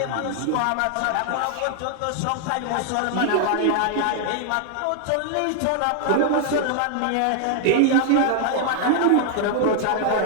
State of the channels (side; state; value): both; different; correlation 0.00